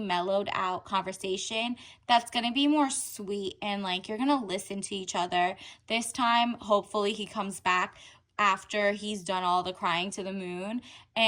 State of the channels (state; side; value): identical; both; correlation 1.00